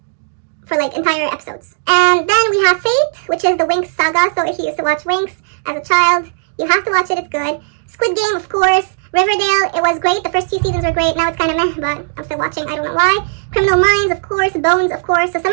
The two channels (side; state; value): left; silent; digital silence